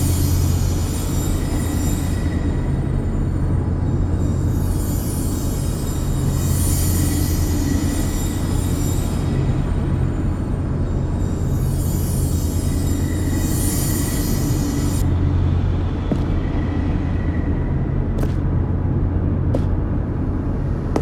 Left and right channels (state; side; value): identical; both; correlation 1.00